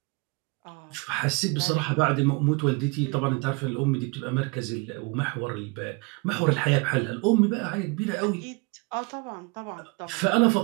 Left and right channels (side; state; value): left; quieter; 28.0 dB